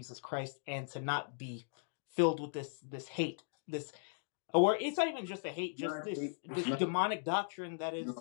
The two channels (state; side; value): silent; right; digital silence